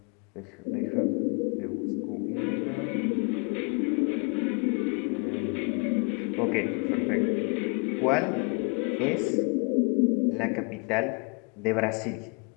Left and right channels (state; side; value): quieter; right; 34.9 dB